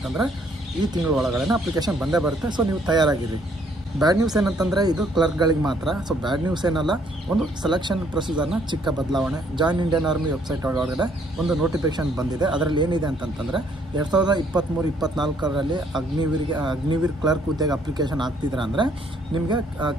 ಈ ತಿಂಗಳ ಒಳಗಡೆ ಅಪ್ಲಿಕೇಶನ್ ಬಂದೇ ಬರುತ್ತೆ. ಸೊ ನೀವು ತಯಾರಾಗಿರಿ. ಬ್ಯಾಡ್ ನ್ಯೂಸ್ ಏನಂತಂದರೆ ಇದು ಕ್ಲರ್ಕ್ಗಳಿಗೆ ಮಾತ್ರ. ಸೊ ಬ್ಯಾಡ್ ನ್ಯೂಸ್ ಏನಲ್ಲ, ಒಂದು ಸೆಲೆಕ್ಷನ್ ಪ್ರೊಸೀಜರ್ನ ಚಿಕ್ಕ ಬದಲಾವಣೆ. ಜಾಯಿನ್ ಇಂಡಿಯನ್ ಆರ್ಮಿ ವೆಬ್ಸೈಟ್ ಒಳಗಡೆ ಒಂದು ನೋಟಿಫಿಕೇಶನ್ ಬಂದಿದೆ. ಅದರಲ್ಲಿ ಏನಿದೆ ಅಂತಂತಂದರೆ 2023-24ರಲ್ಲಿ ಅಗ್ನಿವೀರ್ ಕ್ಲರ್ಕ್ ಹುದ್ದೆಗೆ ಅಪ್ಲಿಕೇಶನ್ ಹಾಕ್ತಿದ್ರೆ ಅಂದರೆ ನಿಮಗೆ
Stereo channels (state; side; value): normal; both; correlation 0.66